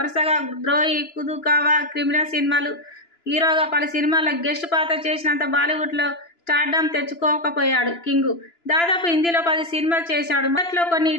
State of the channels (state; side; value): late; right; 2.9 ms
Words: ద్రోహి, కుదుకావా, క్రిమినల్ సినిమాలు హీరోగా పలు సినిమాల్లో గెస్ట్ పాత్ర చేసినంత బాలీవుడ్లో స్టార్డమ్ తెచ్చుకోకపోయాడు కింగు. దాదాపు హిందీలో 10 సినిమాలు చేశాడు. మొదట్లో కొన్ని